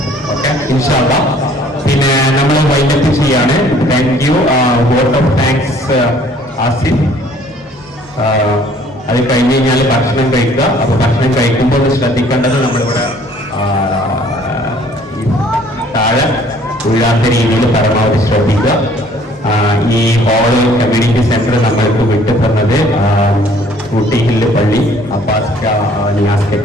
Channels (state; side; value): normal; both; correlation 0.57